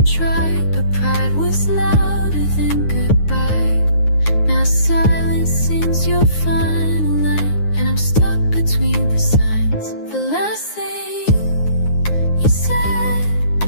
try, but pride was louder than goodbye. Now silence seems your final line, and I'm stuck between the signs. The last thing you said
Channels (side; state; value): right; late; 9.6 ms